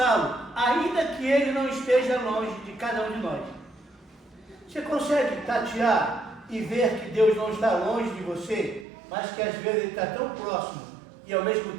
ainda que ele não esteja longe de cada um de nós. Você consegue tatear e ver que Deus não está longe de você, mas que às vezes ele está tão próximo e ao mesmo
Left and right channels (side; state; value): left; drops out; at 8.8 s